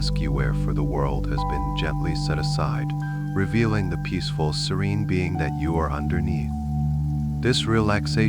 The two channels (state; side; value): identical; both; correlation 1.00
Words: you wear for the world has been gently set aside, revealing the peaceful, serene being that you are underneath. This